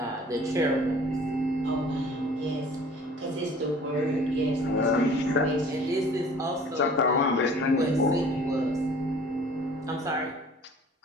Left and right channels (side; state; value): both; normal; correlation 0.49